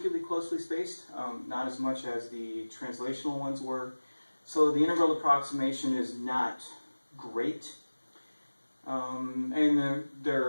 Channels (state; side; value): inverted; both; correlation -1.00